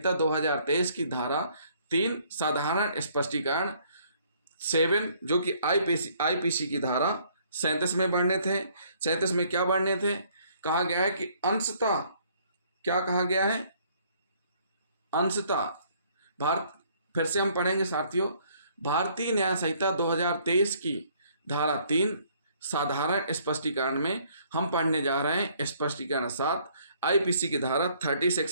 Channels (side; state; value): both; inverted; correlation -0.63